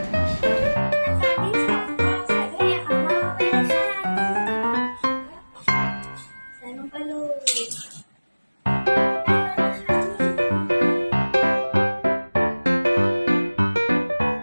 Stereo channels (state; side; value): inverted; both; correlation -1.00